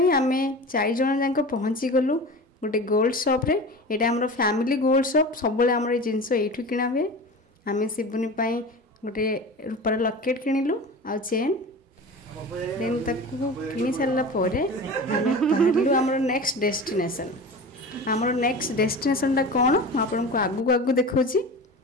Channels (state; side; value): normal; both; correlation 0.33